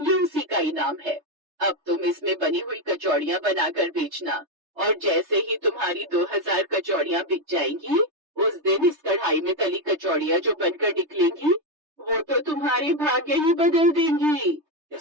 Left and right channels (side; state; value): left; late; 3.3 ms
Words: उसी का इनाम है। अब तुम इसमें बनी हुई कचौड़ियाँ बनाकर बेचना, और जैसे ही तुम्हारी 2000 कचौड़ियाँ बिक जाएंगी, उस दिन इस कढ़ाई में तली कचौड़ियाँ जो बनकर निकलेंगी, वो तो तुम्हारे भाग्य ही बदल देंगी। ये